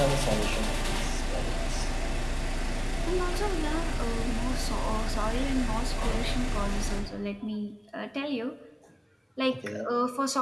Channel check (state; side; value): identical; both; correlation 1.00